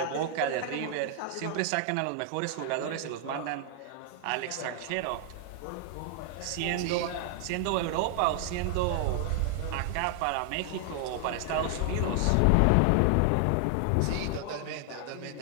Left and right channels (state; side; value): different; both; correlation 0.00